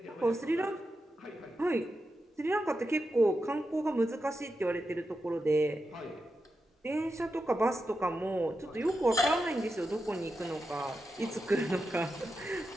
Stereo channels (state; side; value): normal; both; correlation 0.89